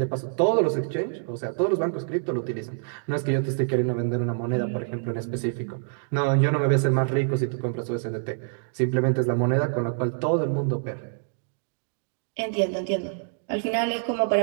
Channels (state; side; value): silent; left; digital silence